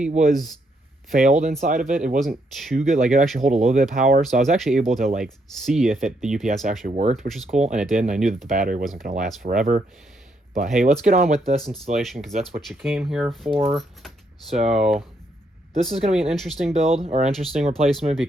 was failed inside of it. It wasn't too good. Like, it actually hold a little bit of power, so I was actually able to like see if the UPS actually worked, which is cool, and it did. And I knew that the battery wasn't going to last forever. But hey, let's get on with this installation because that's what you came here for. So this is going to be an interesting build or interesting replacement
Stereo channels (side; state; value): both; normal; correlation 0.75